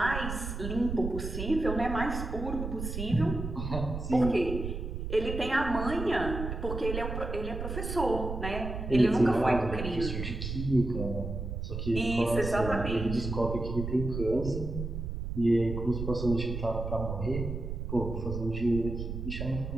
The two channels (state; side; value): noise; right; rumble, 5 dB below the sound